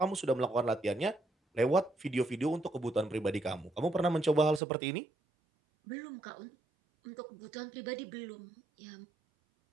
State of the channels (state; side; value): drops out; left; at 4.6 s